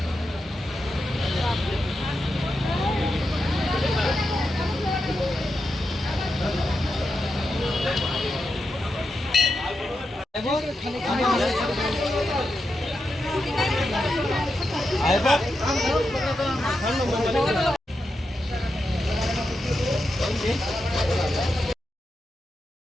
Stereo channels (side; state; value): both; normal; correlation 0.87